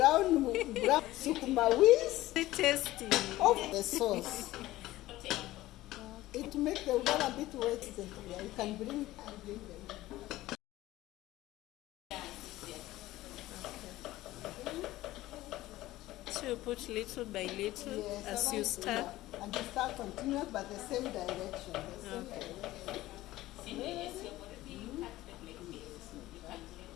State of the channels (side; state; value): right; quieter; 16.6 dB